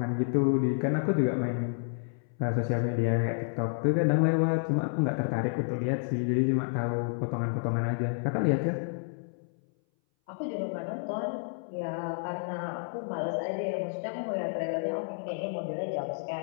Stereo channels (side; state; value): right; silent; 58 dB below the other